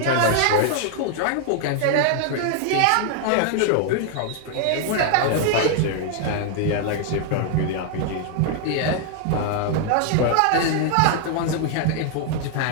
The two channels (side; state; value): both; different; correlation 0.00